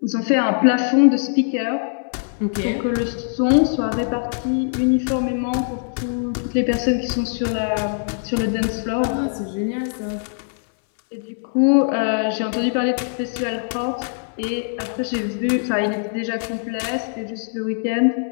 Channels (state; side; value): silent; right; digital silence